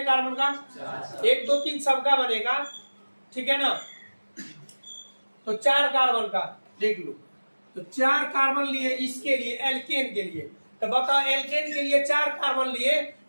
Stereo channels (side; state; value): both; inverted; correlation -1.00